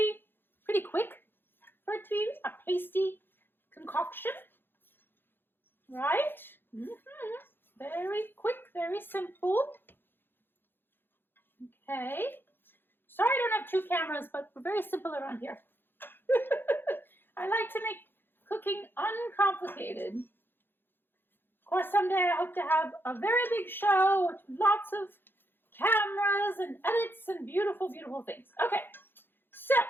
quick for it to be a pasty concoction. Right? Very quick, very simple. Okay. Sorry I don't have two cameras, but we're very simple around here. I like to make cooking uncomplicated. Of course, someday I hope to have a very big show with lots of cameras and edits and beautiful, beautiful things. Okay, so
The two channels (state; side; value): late; right; 0.10 ms